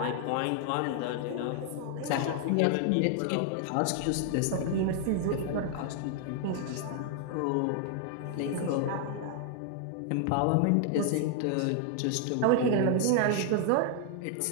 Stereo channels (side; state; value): both; different; correlation 0.00